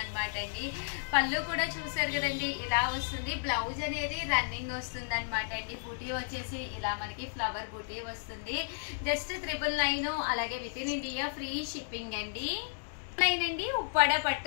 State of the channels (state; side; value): silent; right; digital silence